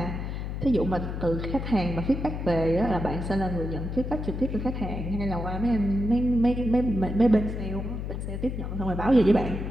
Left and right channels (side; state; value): left; noise; hum, 4 dB below the sound